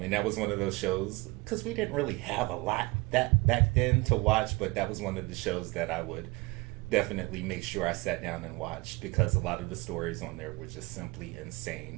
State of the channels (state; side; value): quieter; left; 23.6 dB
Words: And that was one of those shows, because we didn't really have a lot that back then to watch, but that was one of the shows that I would definitely make sure I sat down and watched, because a lot of the stories on there were just simply